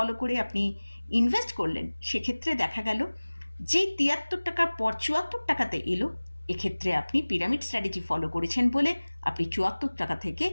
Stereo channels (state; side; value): inverted; both; correlation -1.00